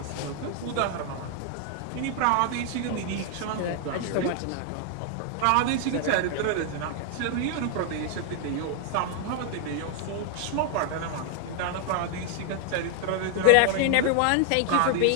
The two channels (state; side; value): different; both; correlation 0.00